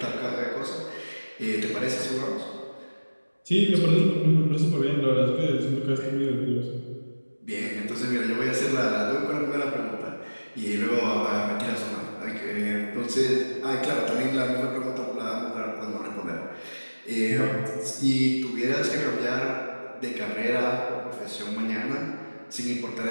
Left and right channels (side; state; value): both; inverted; correlation -1.00